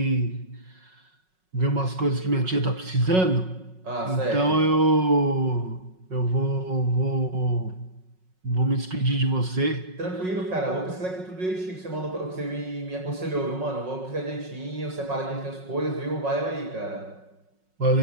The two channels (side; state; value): left; late; 5.4 ms